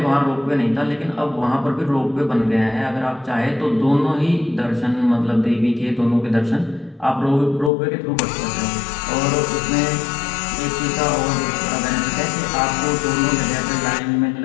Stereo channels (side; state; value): right; drops out; at 7.7 s